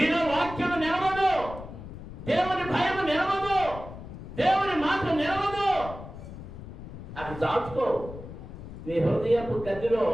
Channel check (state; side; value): noise; left; rumble, 12 dB below the sound